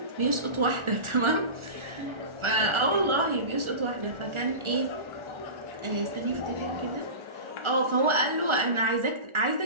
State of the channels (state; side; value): late; left; 1.4 ms